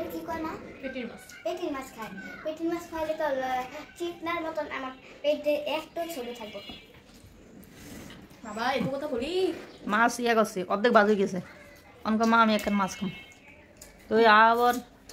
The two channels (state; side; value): identical; both; correlation 1.00